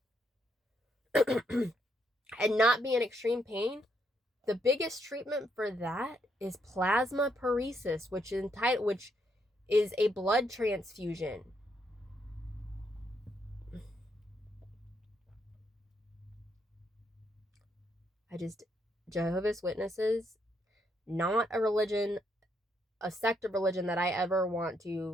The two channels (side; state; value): both; normal; correlation 0.75